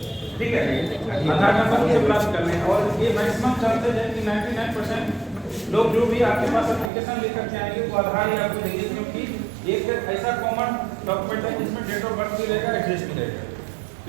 ठीक है, आधार नंबर से प्राप्त करने और ये मैक्सिमम चांसेस है कि 99% लोग जो भी आपके पास एप्लीकेशन लेकर के आएंगे वो आधार ही आपको देंगे, क्योंकि एक ऐसा कॉमन डॉक्यूमेंट है जिसमें डेट ऑफ बर्थ भी रहेगा, एड्रेस भी रहेगा,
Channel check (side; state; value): left; drops out; at 6.9 s